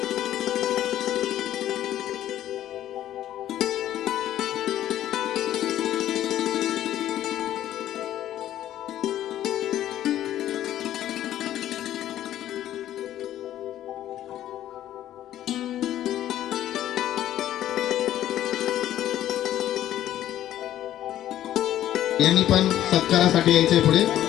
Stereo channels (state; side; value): quieter; right; 12.4 dB